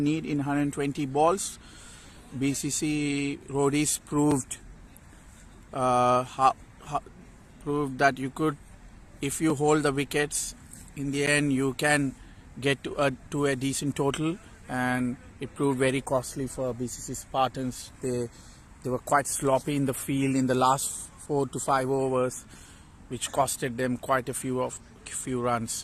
in 120 balls. BCC Roadies proved that you could, if you hold the wickets, in the end you can get to a decent total, and it proved very costly for BCC Spartans. They were quite sloppy in the field in the last 4 to 5 overs, which costed them quite a few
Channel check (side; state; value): both; identical; correlation 1.00